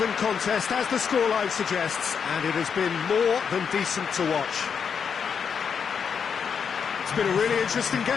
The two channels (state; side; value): quieter; right; 6.7 dB